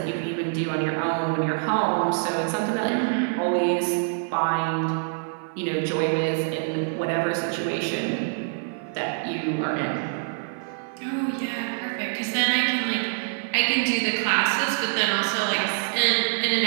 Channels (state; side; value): silent; left; 55 dB below the other